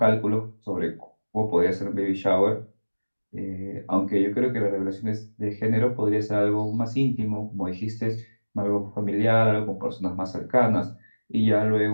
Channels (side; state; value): both; inverted; correlation -1.00